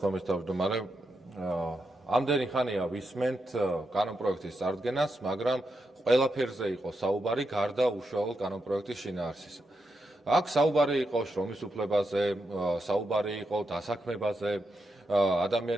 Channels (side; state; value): both; normal; correlation 0.85